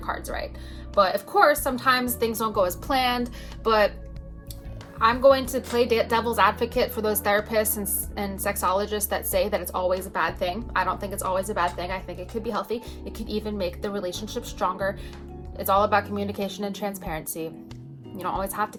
right. But of course, sometimes things don't go as planned, but I'm going to play devil's advocate for those therapists and sexologists that say that it's always a bad thing. I don't think it's always a bad thing. I think it could be healthy. It could even make the relationship stronger. It's all about communication and transparency. You don't always have to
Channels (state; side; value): identical; both; correlation 1.00